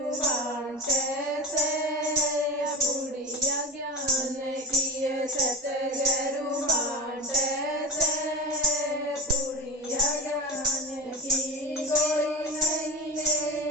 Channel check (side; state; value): both; normal; correlation 0.27